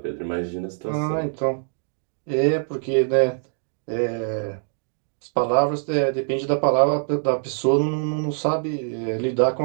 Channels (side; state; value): left; silent; digital silence